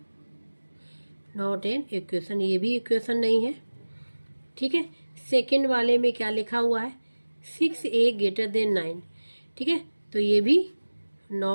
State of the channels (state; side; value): inverted; both; correlation -1.00